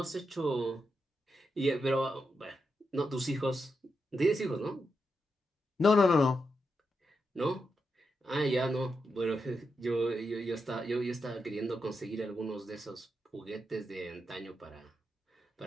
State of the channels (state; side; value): normal; both; correlation 0.85